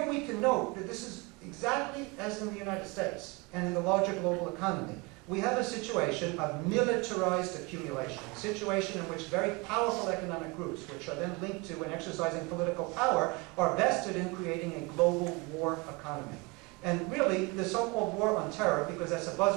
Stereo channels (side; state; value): left; quieter; 26.3 dB